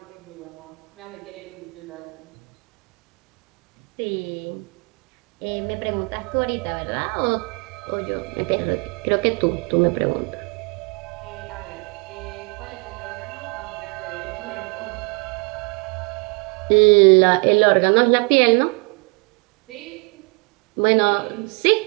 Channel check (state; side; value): quieter; left; 33.2 dB